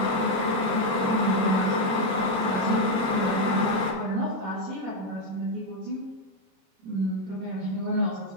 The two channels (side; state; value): left; late; 26 ms